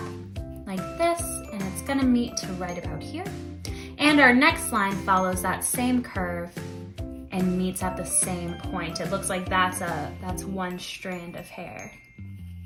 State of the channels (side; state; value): both; identical; correlation 1.00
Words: like this, and it's gonna meet to right about here. And our next line follows that same curve and meets at the same point. It looks like that's one strand of hair,